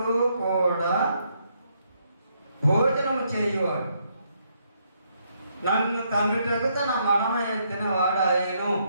కూడా భోజనము చేయువాడు నన్ను తన్నుటకు తన మడమ ఎత్తిన వాడాయను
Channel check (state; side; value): inverted; both; correlation -0.74